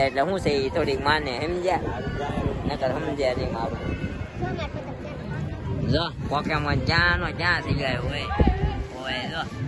એટલે શું છે એ થોડીક માને સમજ્યા નકર સમજ્યા નહીં મારું જો મારે પતંગ છે. જો પોકેમોન જ્યાં થઈ ગયો હોય જો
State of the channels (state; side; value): identical; both; correlation 1.00